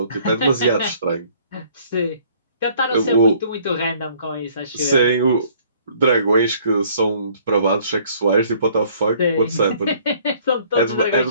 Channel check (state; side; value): inverted; both; correlation -0.59